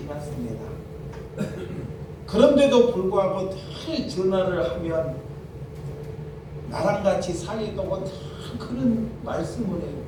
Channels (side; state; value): both; identical; correlation 1.00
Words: 그런데도 불구하고 늘 전화를 하면 나랑 같이 살리라고 다 그런 말씀을 해요.